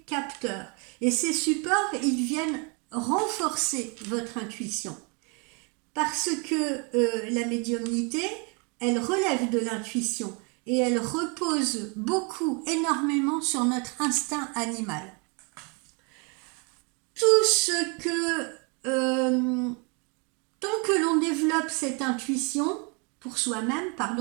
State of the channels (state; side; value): quieter; left; 33.6 dB